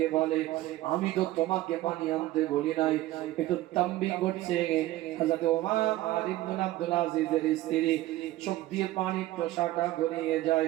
বলে, আমি তো তোমাকে পানি আনতে বলি নাই, একটু তাম্বি করছে। হযরত ওমর ইবনে আব্দুল আজিজের স্ত্রী চোখ দিয়ে পানি প্রসাটা গড়িয়ে যায়।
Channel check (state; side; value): quieter; left; 16.1 dB